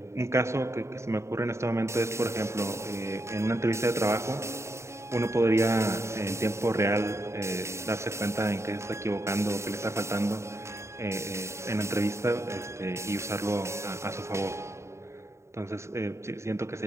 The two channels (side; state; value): left; late; 0.14 ms